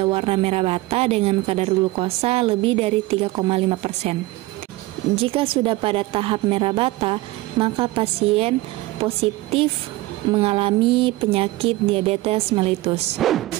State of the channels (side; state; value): left; quieter; 19.1 dB